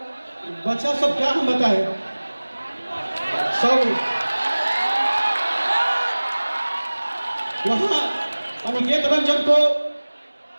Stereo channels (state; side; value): inverted; both; correlation -1.00